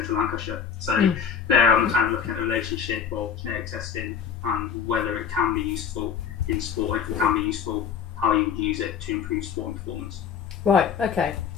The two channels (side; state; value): right; quieter; 7.3 dB